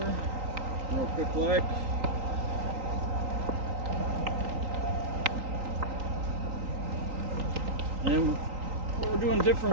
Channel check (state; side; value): late; left; 3.9 ms